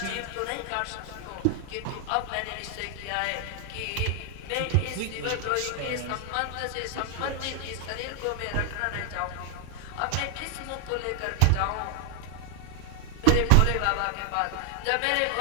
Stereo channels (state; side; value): different; both; correlation 0.00